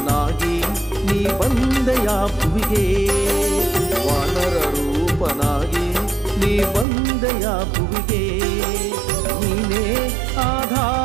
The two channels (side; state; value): left; drops out; at 6.9 s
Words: ನೀ ಬಂದೆಯ ಭುವಿಗೆ ವಾನರ ರೂಪನಾಗಿ ನೀ ಬಂದೆಯ ಭುವಿಗೆ ನೀನೇ